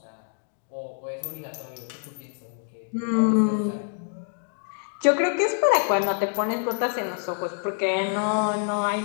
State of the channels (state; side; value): silent; right; 61 dB below the other